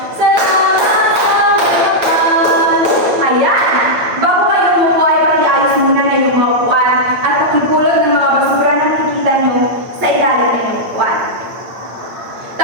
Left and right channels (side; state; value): left; late; 8.8 ms